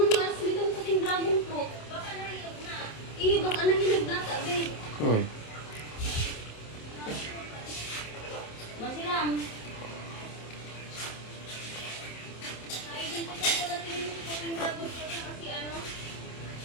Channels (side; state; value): right; late; 27 ms